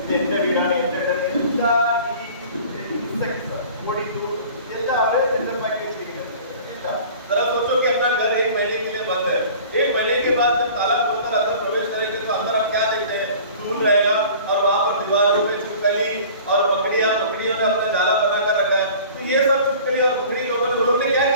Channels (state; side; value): inverted; both; correlation -0.44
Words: എന്റെ വീടാണ് എന്റെ വീടാണ്. എല്ലാ ഈ ഇൻസെക്ട്സ് പൊടി എല്ലാം അവർ സെറ്റപ്പാക്കി വെച്ചിരിക്കുന്നത്. जरा सोचो कि अपना घर 1 महीने के लिए बंद है, 1 महीने के बाद जब ताला खोलकर अंदर प्रवेश करेंगे तो अंदर हम क्या देखते हैं, धूल रहेगा और वहां पर दीवारों पे छिपकली और मकड़ियों ने अपना जाला बना कर रखा है। तो ये सब छिपकली और मकड़ी लोगों ने, उन लोगों ने क्या